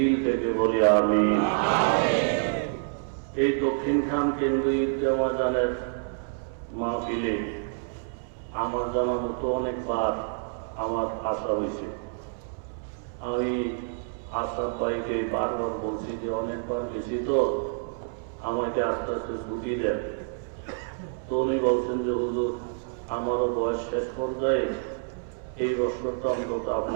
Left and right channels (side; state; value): left; silent; 60 dB below the other